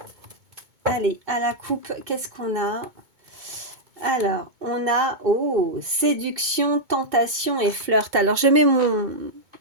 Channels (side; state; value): left; late; 2.2 ms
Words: Allez, à la coupe, qu'est-ce qu'on a? Alors, on a, oh, séduction, tentation et flirt. Alors, je mets